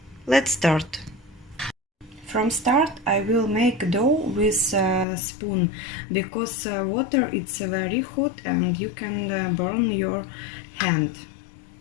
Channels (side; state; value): right; drops out; at 5.1 s